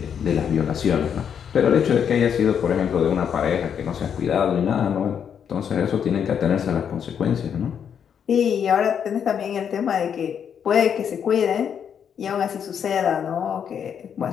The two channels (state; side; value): quieter; right; 8.0 dB